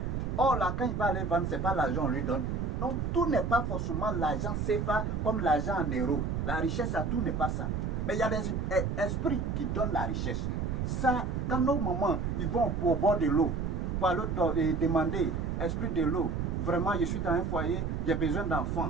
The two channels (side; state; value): right; noise; rumble, 1 dB below the sound